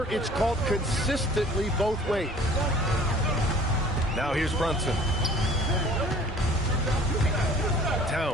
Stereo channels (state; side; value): normal; both; correlation 0.50